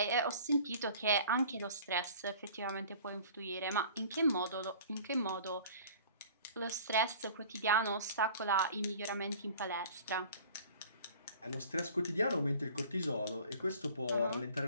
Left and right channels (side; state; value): both; inverted; correlation -0.46